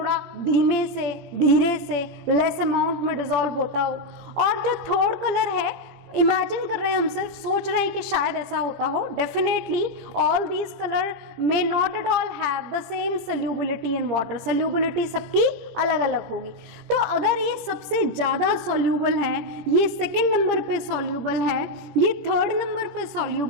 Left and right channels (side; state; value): left; late; 17 ms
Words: धीरे से लेस अमाउंट में डिसॉल्व होता हो, और जो थर्ड कलर है इमेजिन कर रहे हैं, हम सिर्फ सोच रहे हैं कि शायद ऐसा होता हो। Definitely all these colour may not at all have the same solubility in water, solubility सबकी अलग अलग होगी। तो अगर ये सबसे ज्यादा सॉल्यूबल है, ये सेकंड नंबर पे सॉल्यूबल है, ये थर्ड नंबर पे